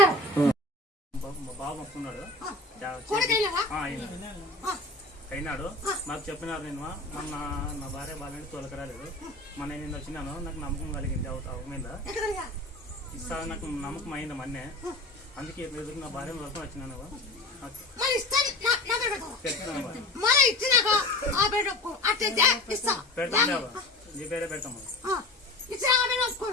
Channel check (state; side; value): normal; both; correlation 0.36